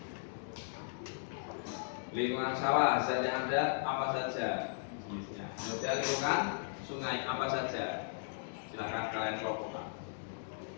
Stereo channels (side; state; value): right; silent; digital silence